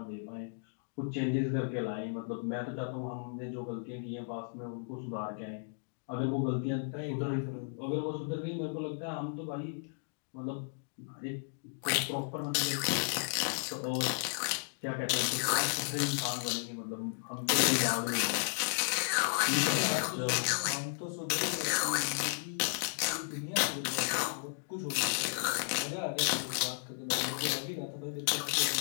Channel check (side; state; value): right; silent; digital silence